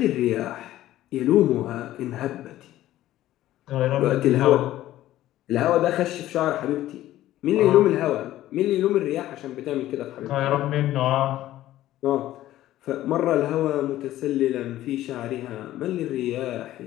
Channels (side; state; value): right; quieter; 14.2 dB